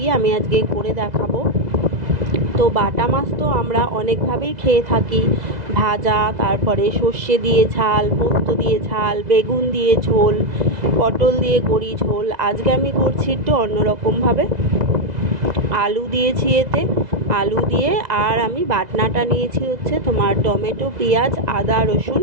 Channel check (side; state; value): left; late; 2.0 ms